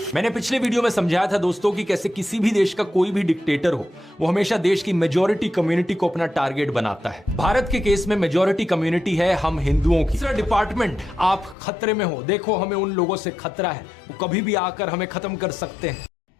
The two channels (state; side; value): drops out; right; at 11.6 s